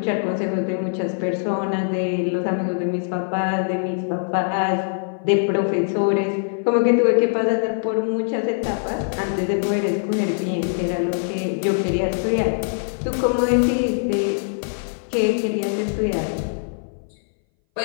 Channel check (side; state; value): right; silent; 60 dB below the other